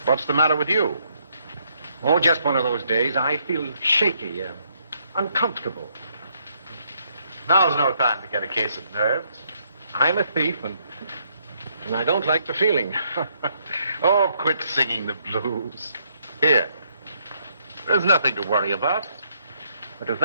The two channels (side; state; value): both; inverted; correlation -0.72